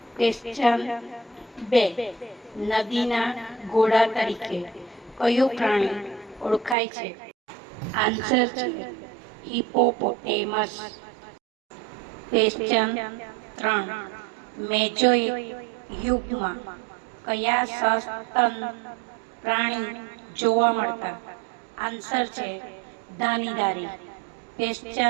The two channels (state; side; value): drops out; left; at 6.8 s